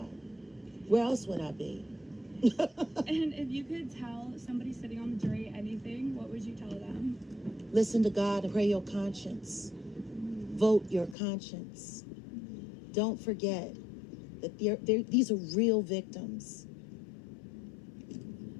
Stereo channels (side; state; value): right; drops out; at 11.2 s